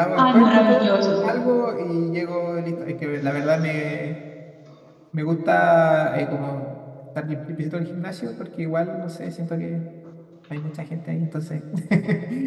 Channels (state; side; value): identical; both; correlation 1.00